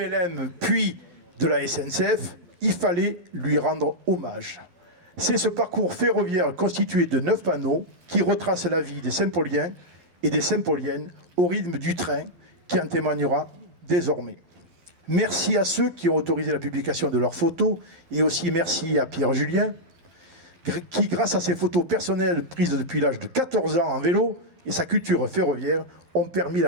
puis de la SNCF, il fallait lui rendre hommage. C'est ce parcours ferroviaire constitué de 9 panneaux qui retrace la vie des Saint-Pauliens et des Saint-Pauliennes au rythme du train qui en témoignera désormais. Merci à ceux qui ont autorisé la publication de leurs photos et aussi merci à Pierre Julien qui, grâce à ses photos personnelles prises depuis l'âge de 14 ans en vélo et sa culture ferroviaire, ont permis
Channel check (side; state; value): left; late; 11 ms